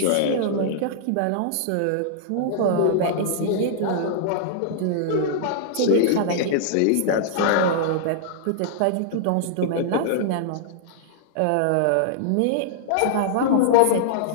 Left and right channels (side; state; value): both; different; correlation -0.02